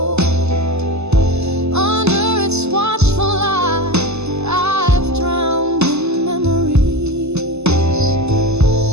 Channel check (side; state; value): left; late; 0.80 ms